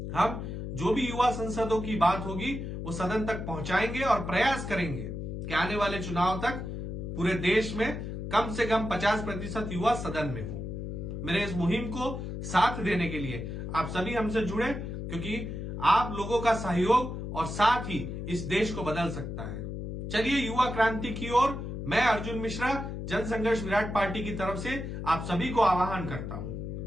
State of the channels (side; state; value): left; noise; hum, 6 dB below the sound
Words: हम जो भी युवा संसदों की बात होगी वो सदन तक पहुंचाएंगे और प्रयास करेंगे कि आने वाले चुनाव तक पूरे देश में कम से कम 50% युवा सदन में हो। मेरे इस मुहिम को साथ देने के लिए आप सभी हमसे जुड़े, क्योंकि आप लोगों का सहयोग और साथ ही इस देश को बदल सकता है। चलिए, युवा क्रांति की ओर मैं अर्जुन मिश्रा जनसंघर्ष विराट पार्टी की तरफ से आप सभी को आह्वान करता